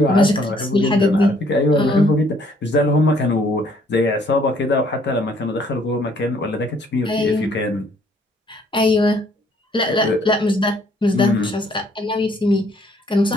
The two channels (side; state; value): both; normal; correlation 0.64